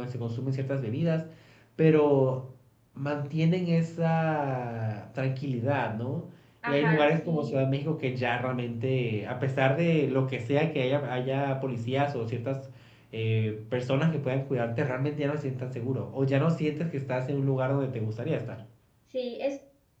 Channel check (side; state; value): both; identical; correlation 1.00